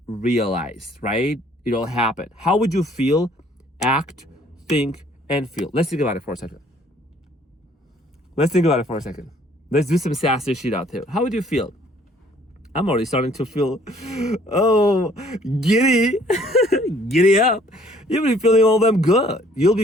realized, right? It all happened. How would you feel, act, think, and feel? Let's think about it for a second. Let's do some sassy shit out there. How would you feel? I'm already starting to feel, oh, giddy, giddy up. You'll be feeling all them good. You'll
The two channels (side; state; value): both; normal; correlation 0.59